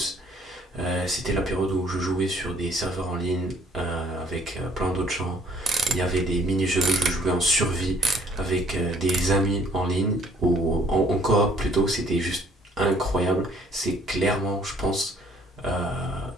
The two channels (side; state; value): both; normal; correlation 0.60